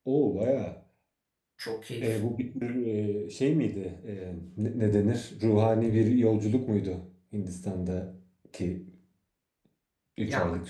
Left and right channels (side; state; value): both; identical; correlation 1.00